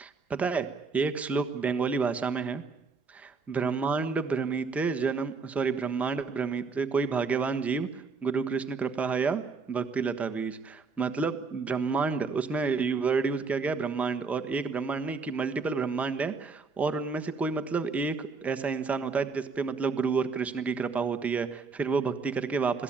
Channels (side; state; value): left; quieter; 4.6 dB